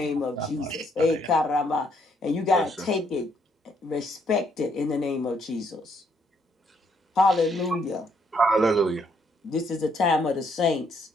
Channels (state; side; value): normal; both; correlation 0.70